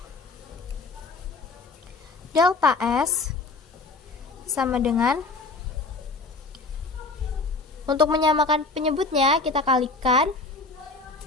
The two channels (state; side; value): quieter; right; 3.7 dB